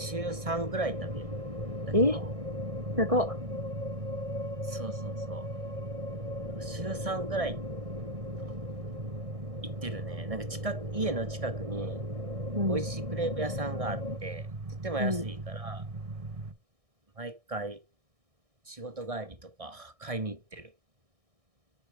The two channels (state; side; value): late; left; 1.6 ms